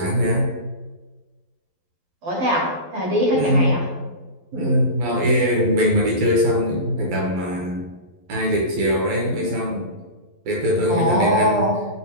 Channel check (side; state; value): left; late; 12 ms